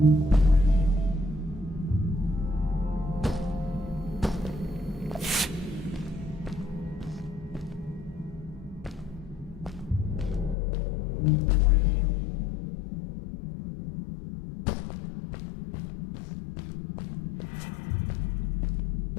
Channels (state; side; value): drops out; right; at 10.6 s